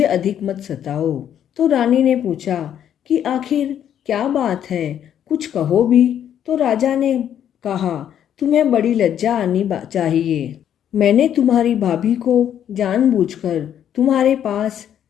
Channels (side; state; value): right; quieter; 9.8 dB